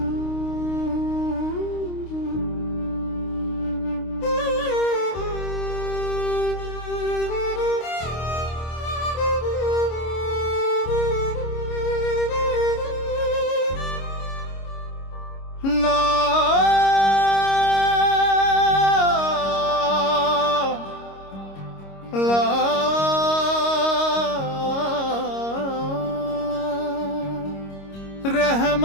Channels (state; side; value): late; right; 26 ms